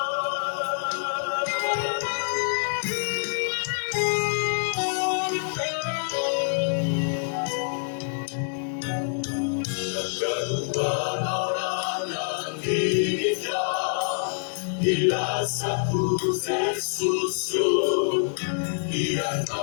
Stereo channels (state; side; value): silent; right; digital silence